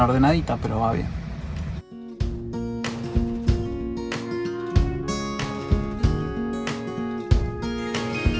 pero va bien.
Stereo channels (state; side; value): identical; both; correlation 1.00